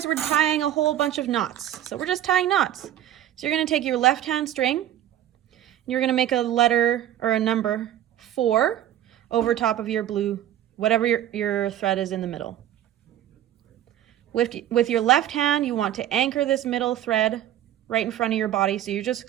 we're tying a whole bunch of knots. So we're just tying knots. So you're going to take your left hand string, and you're going to make a letter or a number 4 over top of your blue, whatever your thread is in the middle. With your left hand, you want to anchor this middle thread right in front of your body. So you're just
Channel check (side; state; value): left; quieter; 11.9 dB